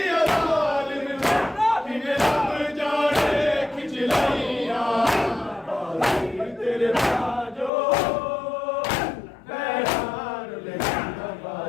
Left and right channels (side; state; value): right; drops out; at 7.7 s